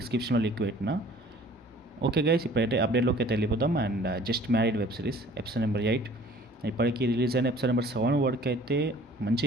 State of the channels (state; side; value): normal; both; correlation 0.51